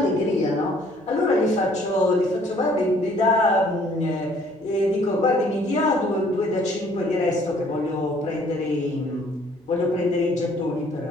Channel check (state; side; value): normal; both; correlation 0.59